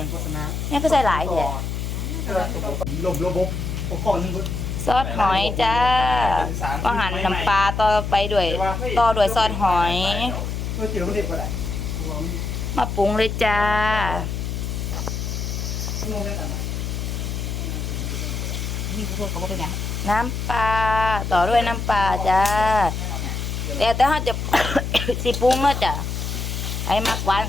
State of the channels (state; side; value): noise; left; hum, 3 dB below the sound